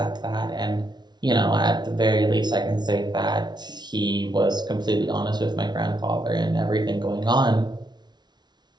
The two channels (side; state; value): left; late; 0.20 ms